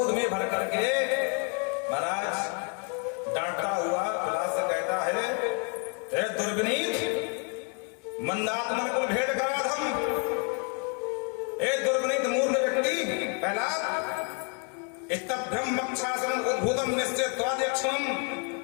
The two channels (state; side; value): quieter; right; 36.4 dB